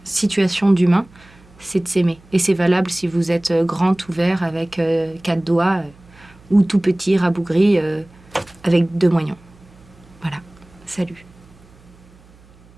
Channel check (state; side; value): noise; right; hum, 26 dB below the sound